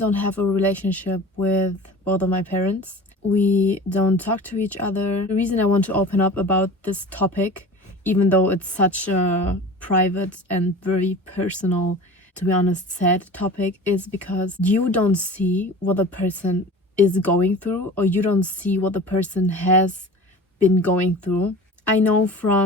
have a relationship with both of my parents. We don't talk to each other. The reason I want to open up about this topic, even though it's such a private and very personal, to be honest, sad topic, is because you don't see what the person is going through, or you don't see what the person has been going through. I know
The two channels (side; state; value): both; normal; correlation 0.38